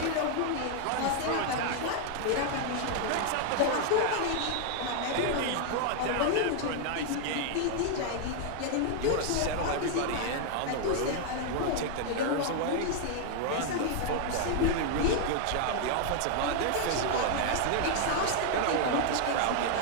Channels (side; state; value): both; different; correlation 0.00